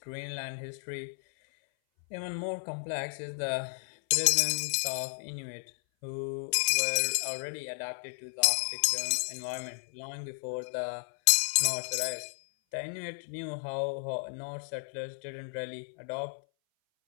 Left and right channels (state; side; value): silent; right; 56 dB below the other